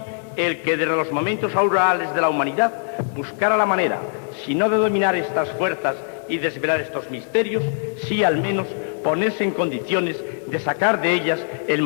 el que desde los momentos aurorales de la humanidad buscara la manera, si no de dominar estas fuerzas y desvelar estos misterios, sí al menos ponerse en condiciones de sacar de ellas el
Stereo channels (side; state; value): right; silent; digital silence